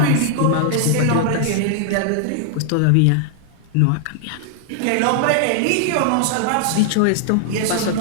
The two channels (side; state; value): both; different; correlation 0.00